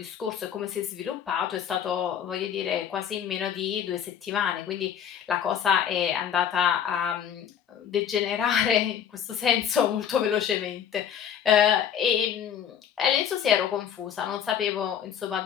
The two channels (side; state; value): right; quieter; 8.8 dB